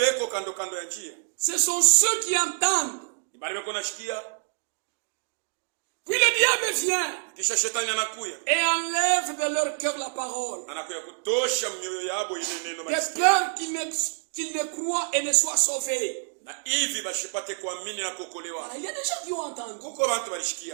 kando kando ya njia. ce sont ceux qui entendent. Bale beko nashikia, Puis le diable vient kisha shetani anakuya. et enlève de leur cœur la parole, Anakuya kutosha mioyo yabo ile neno de malisikia. peur qu'ils ne croient et ne soient sauvés. Na hivi bashipate kuamini na kuokolewa. Voilà, il y a des gens qui ont entendu, Kuko bantu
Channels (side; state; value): left; silent; digital silence